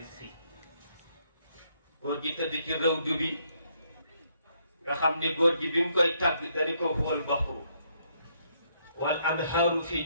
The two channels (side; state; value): both; inverted; correlation -0.72